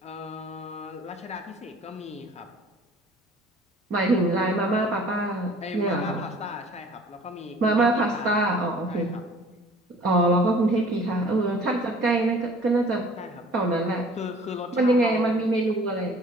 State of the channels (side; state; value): both; normal; correlation 0.50